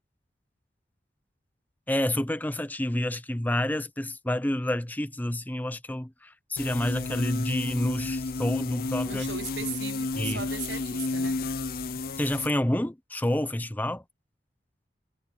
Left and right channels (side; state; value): both; normal; correlation 0.79